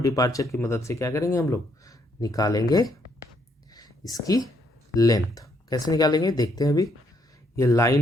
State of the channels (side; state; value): both; normal; correlation 0.72